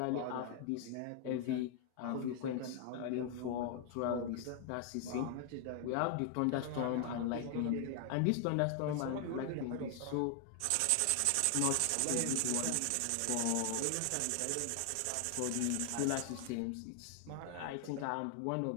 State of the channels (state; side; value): different; both; correlation 0.00